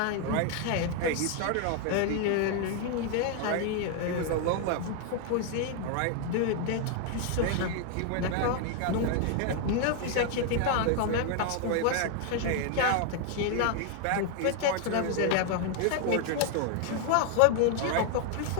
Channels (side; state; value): both; different; correlation 0.00